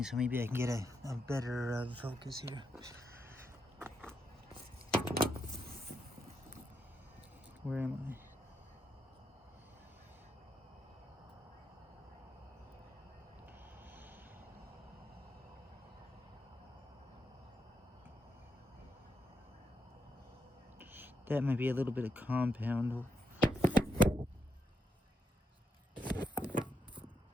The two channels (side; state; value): both; normal; correlation 0.81